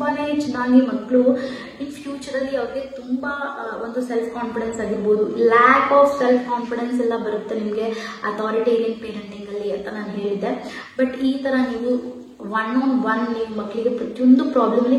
ಚೆನ್ನಾಗಿ ಮಕ್ಕಳು ಇನ್ ಫ್ಯೂಚರಲ್ಲಿ ಅವ್ರಿಗೆ ತುಂಬ ಒಂದು ಸೆಲ್ಫ್ ಕಾನ್ಫಿಡೆನ್ಸ್ ಆಗಿರ್ಬೋದು, ಲ್ಯಾಕ್ ಆಫ್ ಸೆಲ್ಫ್ ಕಾನ್ಫಿಡೆನ್ಸ್ ಎಲ್ಲ ಬರುತ್ತೆ ನಿಮಗೆ ಅಥಾರಿಟೇರಿಯನ್ ಪೇರೆಂಟಿಂಗಲ್ಲಿ ಅಂತ ನಾನು ಹೇಳಿದ್ದೆ. ಬಟ್ ಈ ಥರ ನೀವು ಒನ್ ನೀವು ಮಕ್ಕಳಿಗೆ ಪ್ರತಿಯೊಂದು ಪ್ರಾಬ್ಲಮ್ಲಿ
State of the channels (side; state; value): both; identical; correlation 1.00